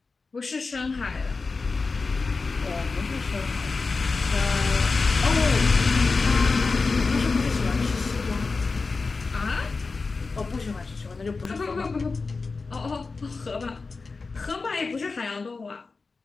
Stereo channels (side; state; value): right; quieter; 4.2 dB